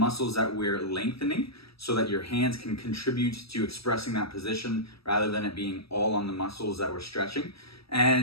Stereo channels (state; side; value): late; right; 0.77 ms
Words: that we're lengthening so that your hands can contribute to expressing that position rather than it being all on the muscles that we're stretching.